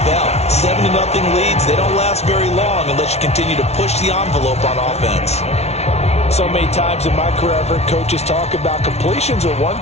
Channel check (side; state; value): right; late; 0.31 ms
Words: 7-0 leads, they don't last very long unless you continue to push the envelope on offense. So many times in my career, I've heard coaches talk about completions are one